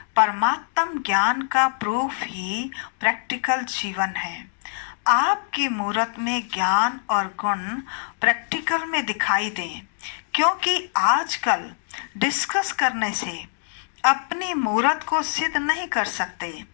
परमात्म ज्ञान का प्रूफ ही प्रैक्टिकल जीवन है। आपकी मूरत में ज्ञान और गुण प्रैक्टिकल में दिखाई दें, क्योंकि आजकल डिस्कस करने से अपनी मूरत को सिद्ध नहीं कर सकते,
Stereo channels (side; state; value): right; silent; digital silence